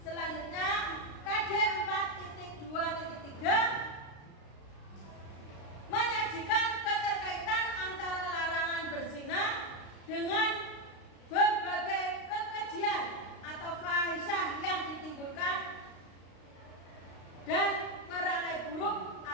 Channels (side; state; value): right; late; 35 ms